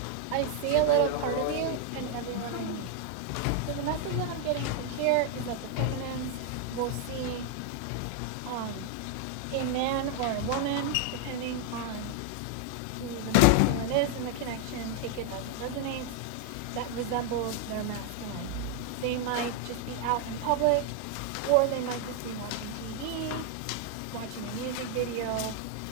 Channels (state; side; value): different; both; correlation 0.00